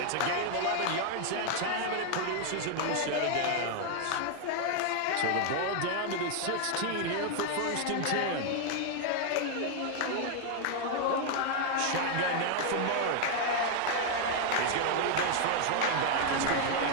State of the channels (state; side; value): different; both; correlation 0.00